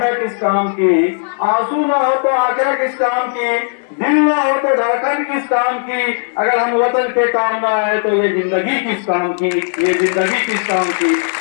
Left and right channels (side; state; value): right; silent; digital silence